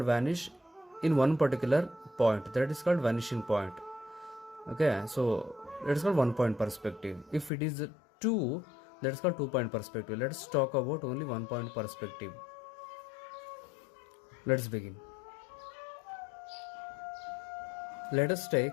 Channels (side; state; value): right; drops out; at 7.5 s